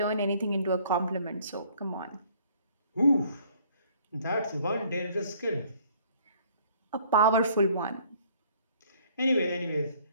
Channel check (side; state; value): both; inverted; correlation -0.59